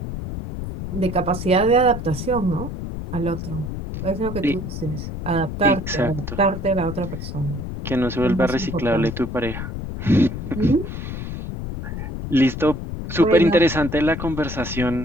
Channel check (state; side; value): noise; left; rumble, 6 dB below the sound